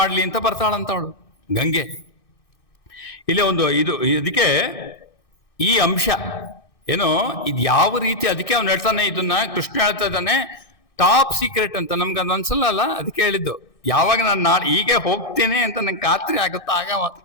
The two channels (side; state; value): right; late; 2.6 ms